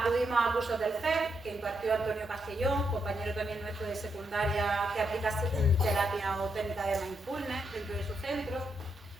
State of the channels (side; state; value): both; normal; correlation 0.80